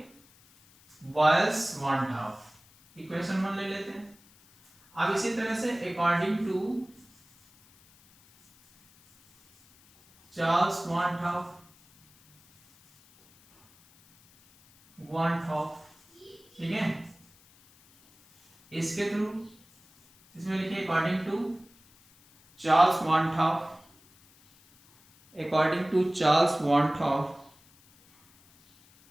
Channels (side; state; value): left; noise; hiss, 29 dB below the sound